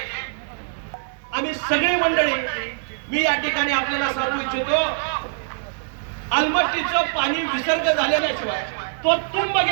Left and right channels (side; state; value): left; silent; digital silence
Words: आम्ही सगळी मंडळी, मी या ठिकाणी आपल्याला सांगू इच्छितो, अलमट्टीचं पाणी विसर्ग झाल्याशिवाय, तो तुंब